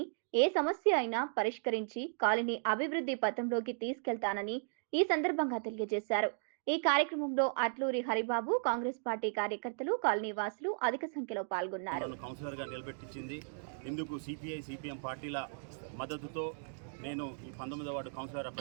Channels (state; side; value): silent; left; digital silence